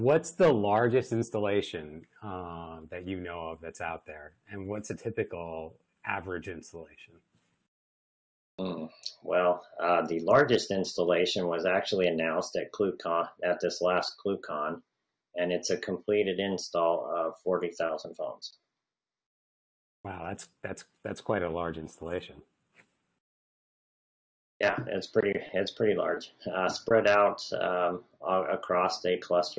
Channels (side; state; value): both; identical; correlation 1.00